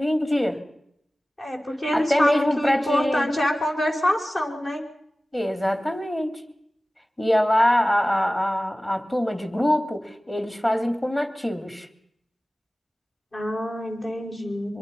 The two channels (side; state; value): both; normal; correlation 0.97